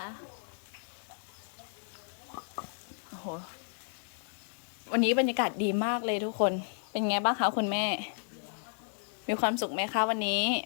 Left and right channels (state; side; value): silent; right; digital silence